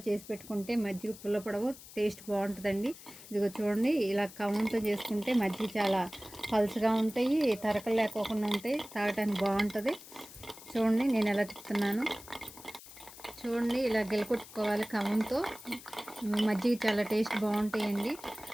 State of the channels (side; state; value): left; noise; hiss, 17 dB below the sound